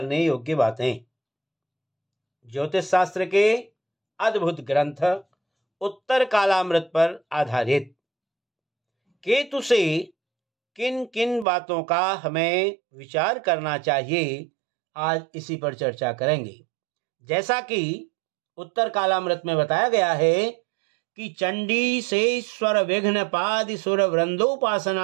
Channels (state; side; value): drops out; left; at 11.5 s